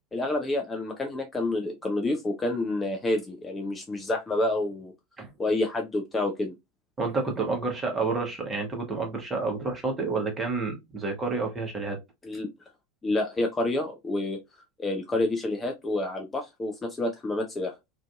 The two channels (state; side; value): normal; both; correlation 0.59